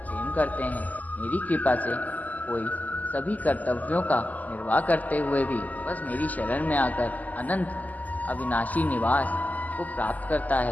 करते हैं। मेरी कृपा से कोई सभी कर्तव्यों का निर्वाह करते हुए भी बस मेरी शरण में आकर अनंत अविनाशी निवास को प्राप्त करता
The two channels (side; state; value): right; late; 0.079 ms